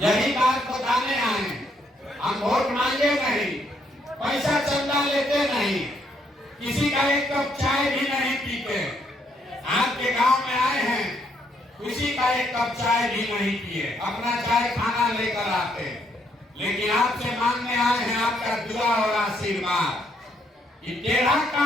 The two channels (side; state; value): both; normal; correlation 0.72